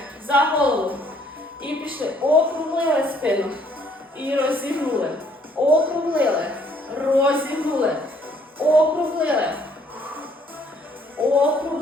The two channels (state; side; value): normal; both; correlation 0.64